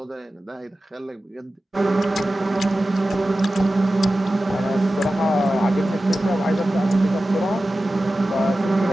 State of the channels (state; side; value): normal; both; correlation 0.95